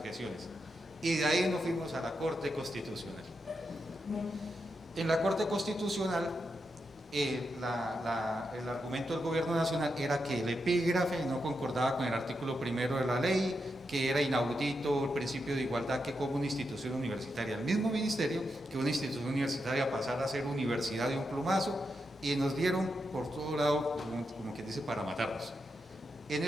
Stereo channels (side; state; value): both; normal; correlation 0.85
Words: Y de ahí nos fuimos a la Corte Constitucional. En la Corte Constitucional, el argumento del Gobierno Nacional era que el epígrafe no concordaba con el artículo 1 de la ley, que era inaudito el principio de igualdad que como una institución universitaria, el mismo ministerio, que una institución universitaria pasara a ser universidad de un plumazo, y nos dieron por todo lado, como que dice, para matarnos. En